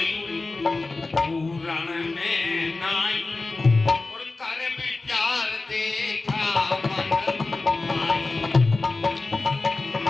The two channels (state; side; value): quieter; right; 3.5 dB